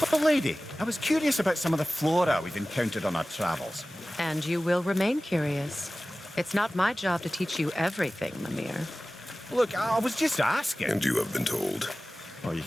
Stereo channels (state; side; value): normal; both; correlation 0.97